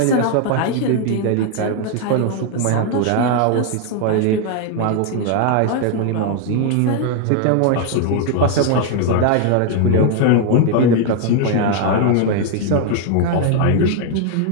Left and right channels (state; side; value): different; both; correlation 0.01